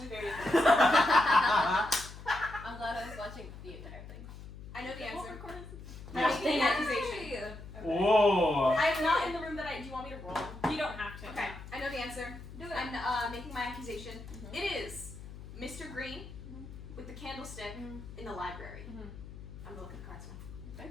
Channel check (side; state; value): left; noise; hum, 13 dB below the sound